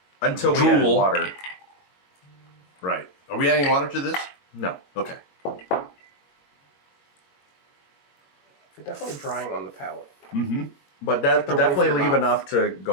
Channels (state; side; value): late; right; 21 ms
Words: Until we added Drool. water. Right. Are we adding water to this? No. Okay. It's definitely drying on the palate. Mm-hmm. But that the definitely roof of your leave mouth. enough to